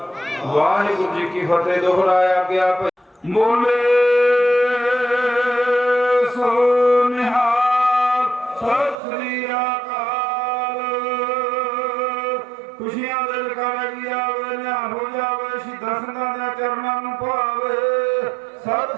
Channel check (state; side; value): drops out; left; at 9.0 s